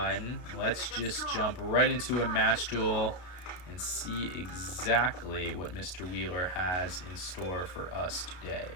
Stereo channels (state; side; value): late; right; 33 ms